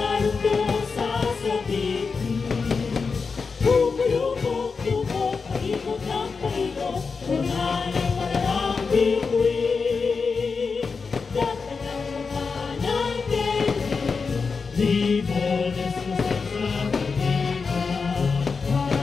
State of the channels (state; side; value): quieter; right; 4.9 dB